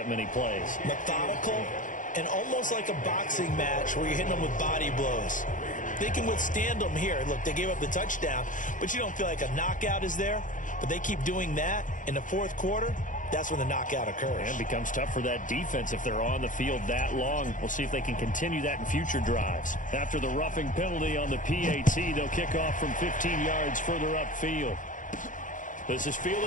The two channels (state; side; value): late; right; 0.38 ms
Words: many plays. Methodical and almost like a boxing match where you're hitting them with body blows. They can withstand them here. Look, they gave up the touchdown, but you don't feel like a knockout is there. But they keep doing that in the fourth quarter. That's when the knockout occurs. And it becomes tough for that defense if they're on the field that long. We'll see if they can continue that in future drives. After the roughing penalty on the PAT, they'll kick off from 15 yards further upfield. This is